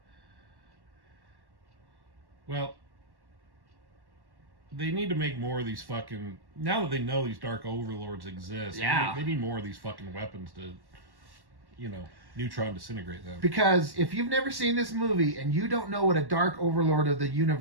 Well, they need to make more of these fucking... Now that they know these Dark Overlords exist, they need more of these fucking weapons to, you know, neutron disintegrate them. Because if you've never seen this movie and you don't know what a Dark Overlord of the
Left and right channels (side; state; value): left; late; 1.1 ms